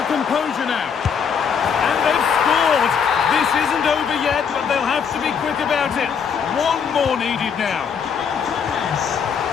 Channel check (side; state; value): right; quieter; 6.8 dB